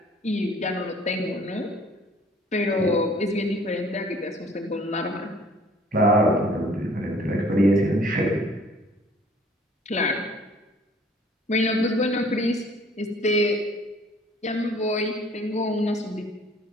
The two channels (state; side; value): normal; both; correlation 0.55